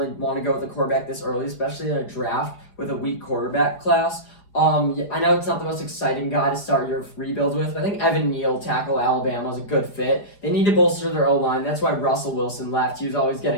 want to go with a quarterback this early, especially in a draft with a weak quarterback class. I know it's not the most exciting guy to start your rebuild with, but I think Evan Neal, tackle Alabama, is a good fit. They need to bolster their O-line. That's why Russell Wilson left. He was always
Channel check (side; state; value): right; late; 4.9 ms